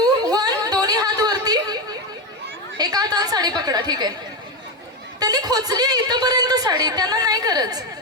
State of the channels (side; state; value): both; normal; correlation 0.12